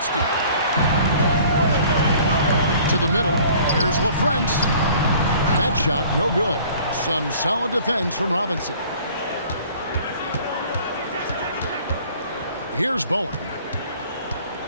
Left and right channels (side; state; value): both; inverted; correlation -0.52